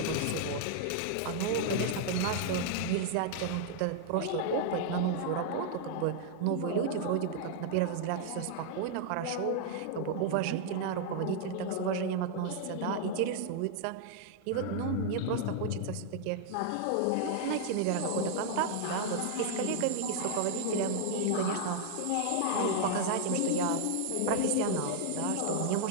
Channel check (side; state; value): both; different; correlation -0.01